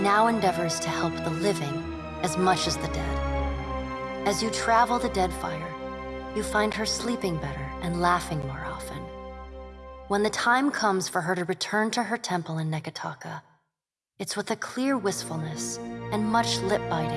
endeavors to help the living as much as the dead. As you travel the Deadfire, you find her sleeping better and laughing more often. When the time comes for her to return to her temple in Neketaka, it's with a clear wistfulness and much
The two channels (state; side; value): identical; both; correlation 1.00